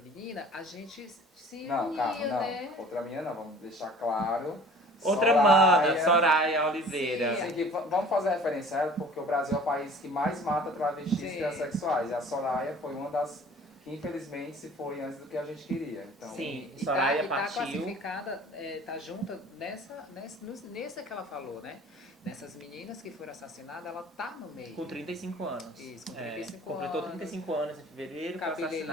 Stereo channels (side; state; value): both; normal; correlation 0.48